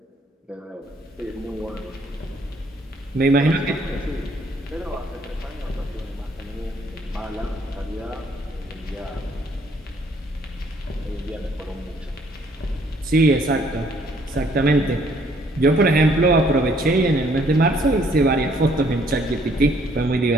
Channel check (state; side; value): normal; both; correlation 0.64